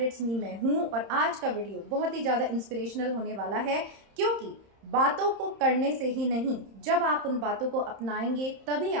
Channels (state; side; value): late; left; 31 ms